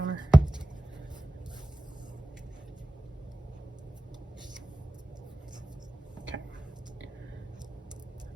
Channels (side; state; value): both; normal; correlation 0.95